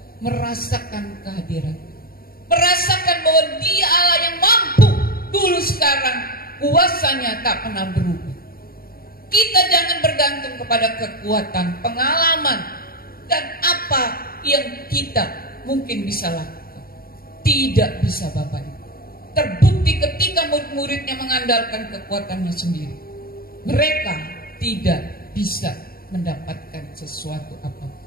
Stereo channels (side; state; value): right; late; 0.43 ms